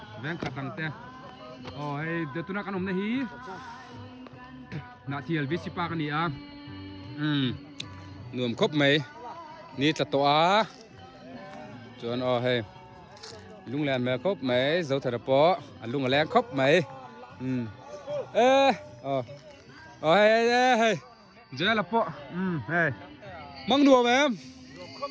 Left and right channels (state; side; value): identical; both; correlation 1.00